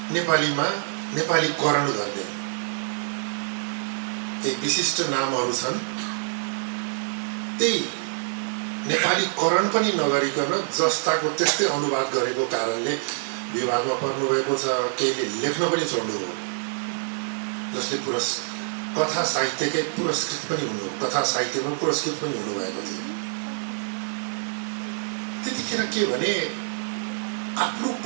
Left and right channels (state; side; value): silent; left; digital silence